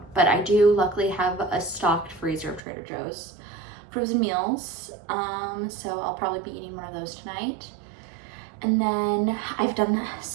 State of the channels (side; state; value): left; drops out; at 2.6 s